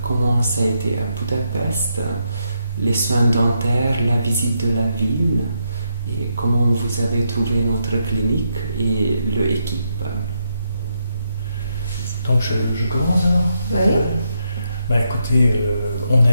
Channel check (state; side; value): inverted; both; correlation -0.81